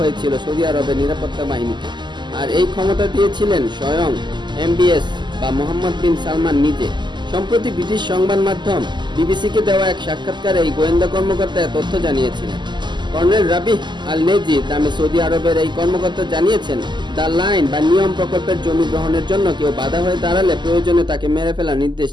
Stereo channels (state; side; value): late; left; 0.21 ms